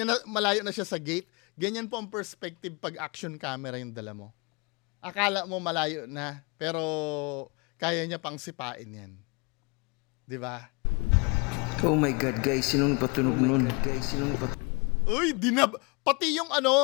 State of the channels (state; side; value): quieter; right; 30.3 dB